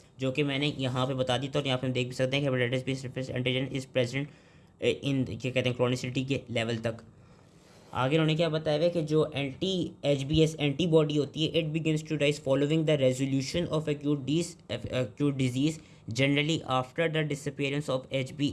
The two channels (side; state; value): both; identical; correlation 1.00